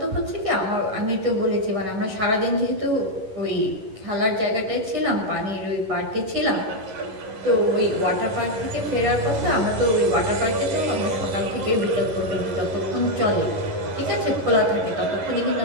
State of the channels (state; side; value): late; left; 11 ms